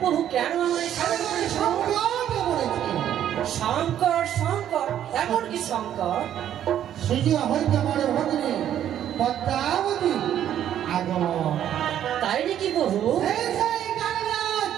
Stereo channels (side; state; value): left; quieter; 10.7 dB